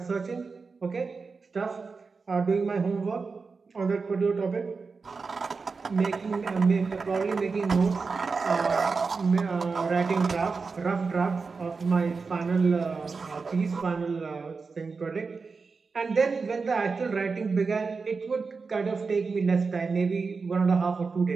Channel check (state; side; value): quieter; left; 4.6 dB